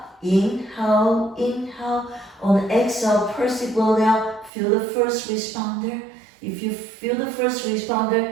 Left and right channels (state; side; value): drops out; left; at 4.5 s